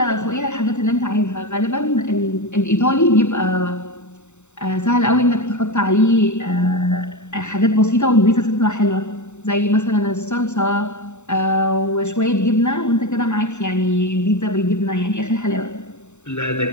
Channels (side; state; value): right; late; 0.83 ms